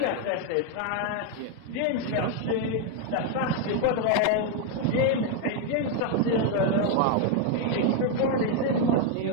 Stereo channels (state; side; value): different; both; correlation 0.01